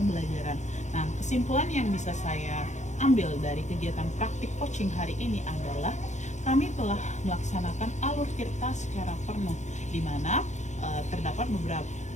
Nah, kesimpulan yang bisa saya ambil dari kegiatan praktik coaching hari ini adalah kami telah melaksanakan alur tirta secara penuh, di mana terdapat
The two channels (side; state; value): right; late; 0.34 ms